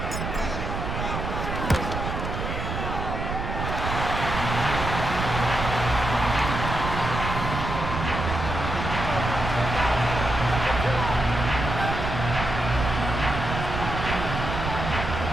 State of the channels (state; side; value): noise; right; rumble, 4 dB below the sound